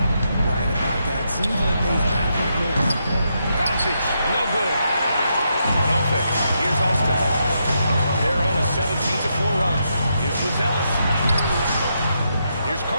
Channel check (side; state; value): both; inverted; correlation -0.81